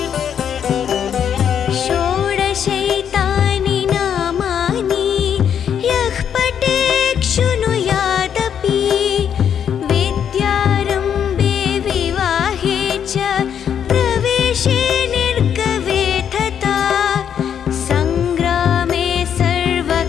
षोडशैतानि नामानि यः पठेत् शृणुयादपि विद्यारम्भे विवाहे च प्रवेशे निर्गवे तथा सङ्ग्रामे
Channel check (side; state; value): right; quieter; 8.5 dB